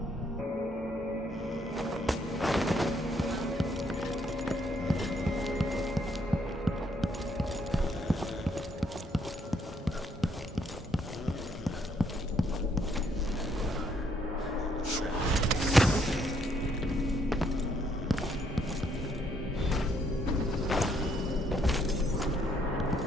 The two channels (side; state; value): both; normal; correlation 0.70